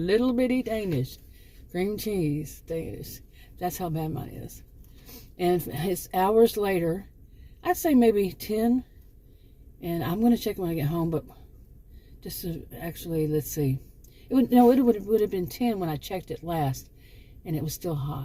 bitty Danish. Cream cheese Danish. That's how bad mine is. And it's hours later. I'd say maybe 10. And I'm going to check when I get home. But just to actually, let's see. It would have been 10 when I checked it last. And it was still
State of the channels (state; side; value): identical; both; correlation 1.00